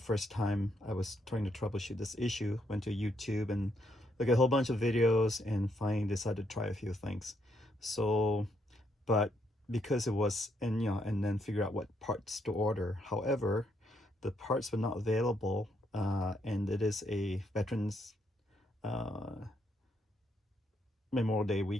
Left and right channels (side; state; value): both; normal; correlation 0.75